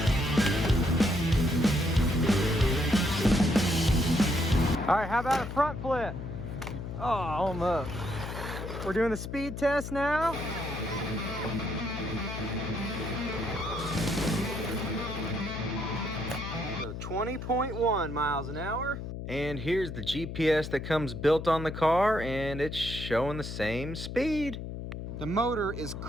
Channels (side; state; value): left; noise; hum, 7 dB below the sound